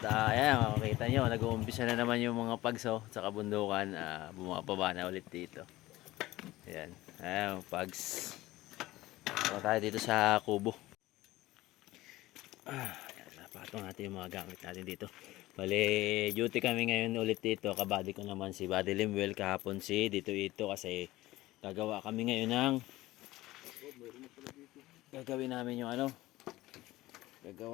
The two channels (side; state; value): right; quieter; 17.7 dB